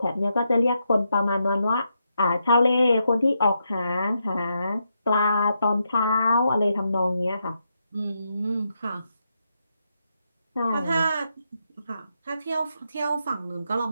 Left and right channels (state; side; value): inverted; both; correlation -0.82